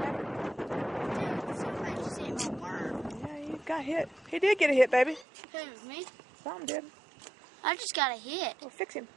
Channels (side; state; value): left; drops out; at 5.2 s